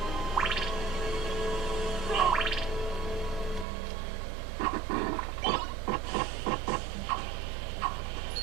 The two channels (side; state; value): left; drops out; at 3.7 s